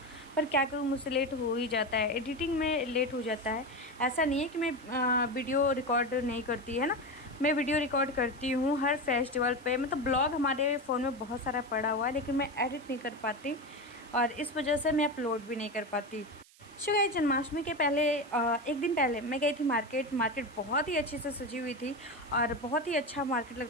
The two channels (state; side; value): noise; right; hiss, 26 dB below the sound